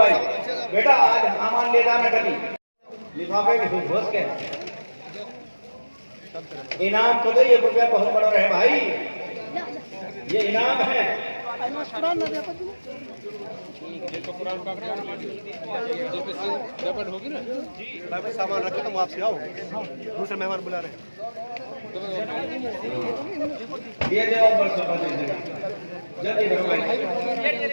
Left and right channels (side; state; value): both; inverted; correlation -1.00